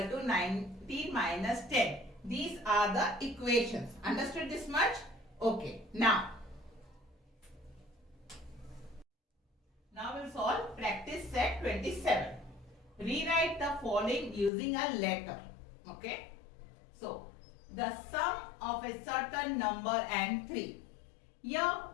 to 19 minus 10. These are the equations. Understood this much? Okay. Now we'll solve practice set 27. Rewrite the following using a letter. Okay. So, the sum of a certain number and 3. Here,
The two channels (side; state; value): right; drops out; at 14.5 s